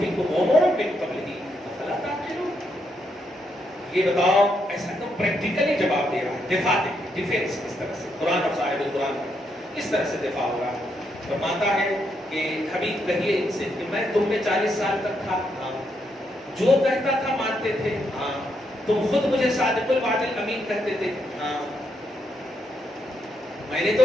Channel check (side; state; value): both; normal; correlation 0.78